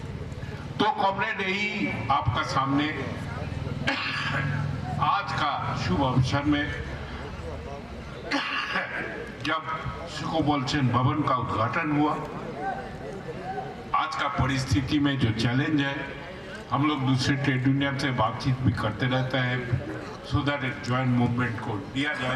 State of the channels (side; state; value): both; identical; correlation 1.00